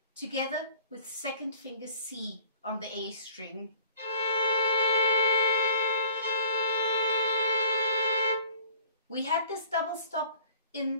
together with second finger C on the A string. We had this double stop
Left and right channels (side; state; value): both; inverted; correlation -0.51